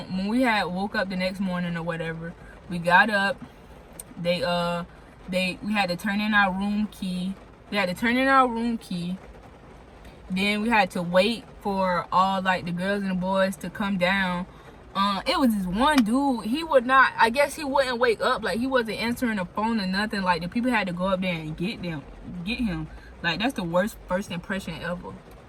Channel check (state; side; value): identical; both; correlation 1.00